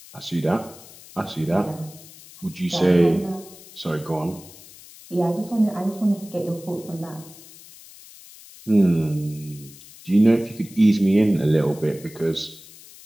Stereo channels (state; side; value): noise; left; hiss, 20 dB below the sound